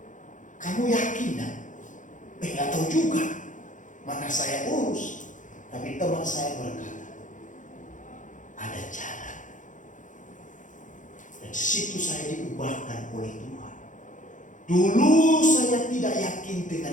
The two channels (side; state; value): right; late; 0.37 ms